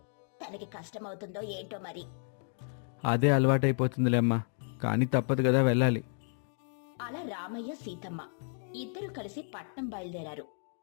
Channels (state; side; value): silent; right; 56 dB below the other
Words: తనకి కష్టమవుతుందో ఏంటో మరి. అదే అలవాటైపోతుందిలే అమ్మా, కానీ తప్పదు కదా, వెళ్ళాలి. అలా రామయ్య సీతమ్మ ఇద్దరూ కలిసి పట్నం బయలుదేరారు.